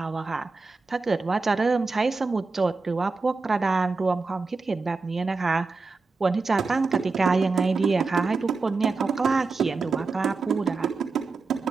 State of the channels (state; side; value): quieter; left; 4.1 dB